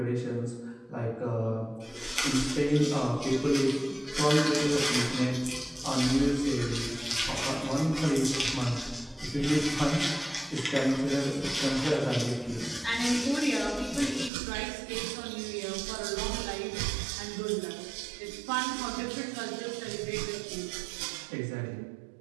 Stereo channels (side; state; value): left; drops out; at 14.3 s